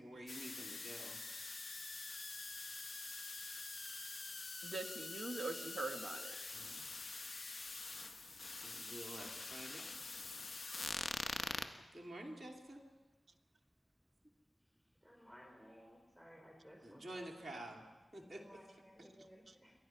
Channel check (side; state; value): both; normal; correlation 0.92